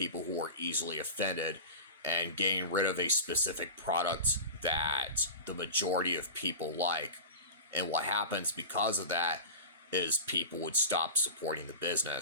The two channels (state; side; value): inverted; both; correlation -0.30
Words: who are easily offended and getting rid of a specific product that the majority of people like. And what happens because of that is people would stop supporting the